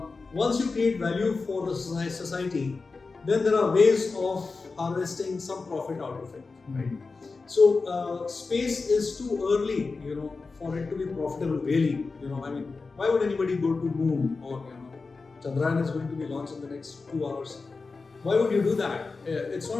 once you create value for the society, then there are ways of harvesting some profit out of it. Right. So space is too early, for it to be profitable. Really, why would anybody go to moon, or Chandrayaan is going to be launched in the next 2 hours? Why would you do that? It's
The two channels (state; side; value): quieter; right; 4.2 dB